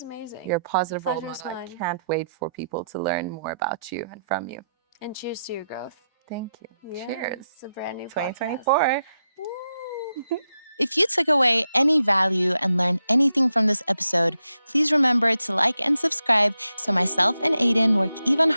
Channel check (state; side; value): inverted; both; correlation -0.85